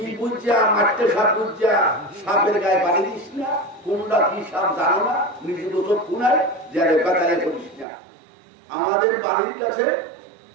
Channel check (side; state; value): left; drops out; at 7.9 s